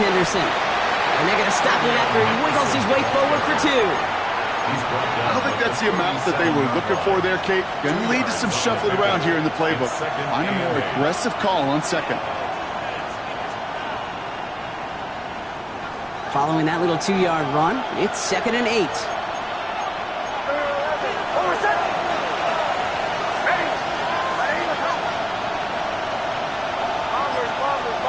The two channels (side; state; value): both; identical; correlation 1.00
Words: And they're going to stop him after he wiggles his way forward for 2. I don't think that's the amount that they were looking for there, Kate. Going to lead to some shuffling around here in the playbook. Find a more aggressive call on second. Following that little 2-yard run, it's 2nd and 8.